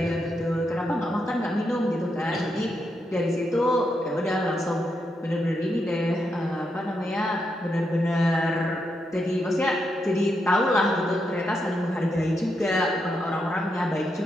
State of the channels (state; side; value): normal; both; correlation 0.82